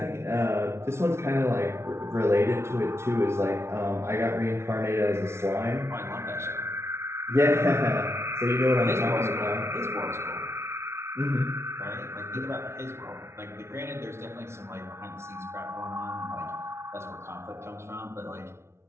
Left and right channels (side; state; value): left; late; 0.13 ms